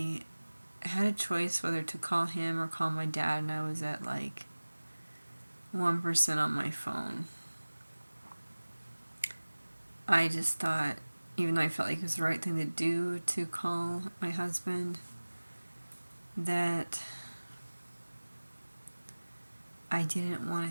had a choice whether to call him or call my dad, and I was at like 1% on my phone. I just thought, even though I felt like it was the right thing to do to call my husband, that I didn't want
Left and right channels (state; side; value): inverted; both; correlation -1.00